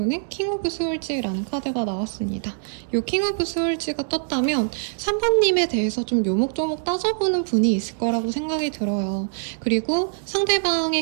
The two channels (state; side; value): silent; left; digital silence